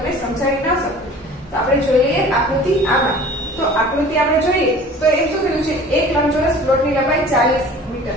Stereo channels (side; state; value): both; normal; correlation 0.45